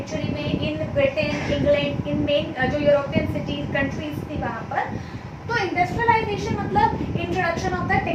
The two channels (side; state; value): both; identical; correlation 1.00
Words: में in Britain, England, in main जो यूरोपियन सिटीज कंट्रीज थी वहाँ पर। तो इंडस्ट्रियलाइजेशन मतलब introduction of the